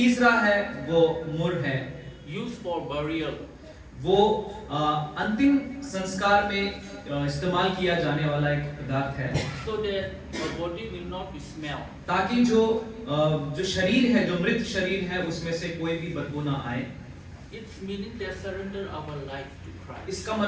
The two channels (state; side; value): identical; both; correlation 1.00